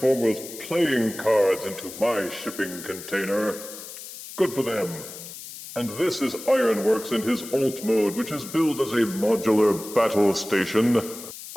playing cards into my shipping container. Good for them. And this is Ironworks in his alt mode, which is billed as a modular battle station.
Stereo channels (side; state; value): left; noise; hiss, 13 dB below the sound